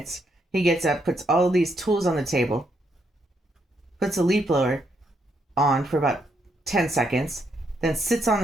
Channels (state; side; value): normal; both; correlation 0.76